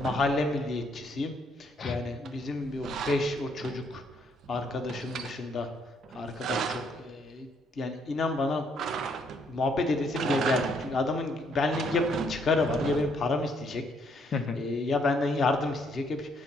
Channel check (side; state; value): both; normal; correlation 0.70